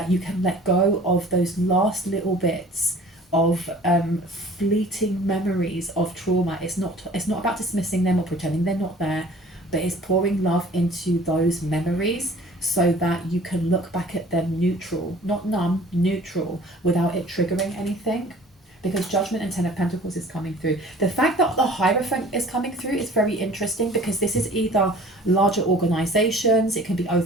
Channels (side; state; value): both; normal; correlation 0.49